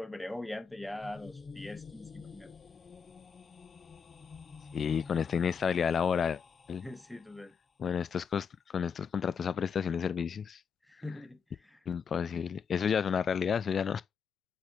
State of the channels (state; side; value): quieter; right; 6.5 dB